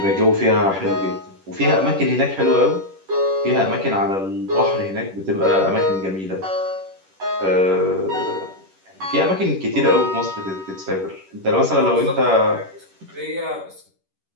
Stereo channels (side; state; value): left; late; 10 ms